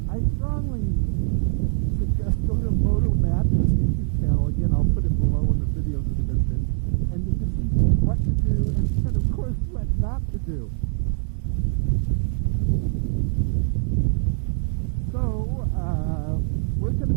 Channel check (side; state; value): left; silent; 60 dB below the other